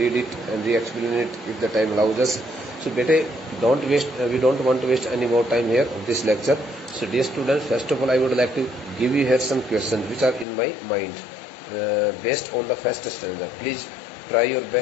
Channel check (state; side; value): drops out; right; at 10.5 s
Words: it and re-explain it if the time allows us. So beta, we don't want to waste any more time here of this lecture. So dear students, first of all I would like to give you here some questions which are in my mind based on the first stanza. Please try your